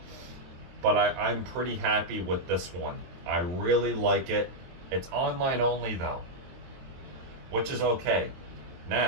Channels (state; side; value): late; left; 22 ms